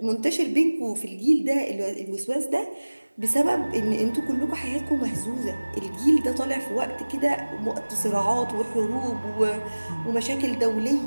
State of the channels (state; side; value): inverted; both; correlation -1.00